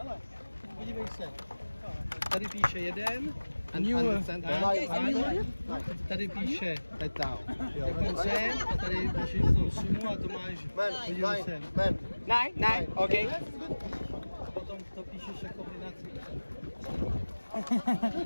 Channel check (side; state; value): both; inverted; correlation -1.00